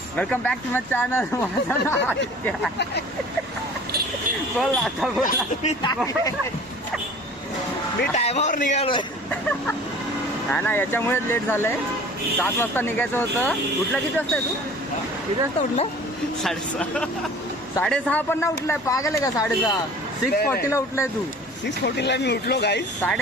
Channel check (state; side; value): normal; both; correlation 0.45